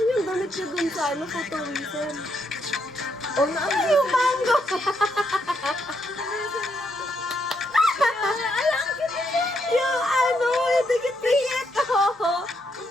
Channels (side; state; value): both; normal; correlation 0.77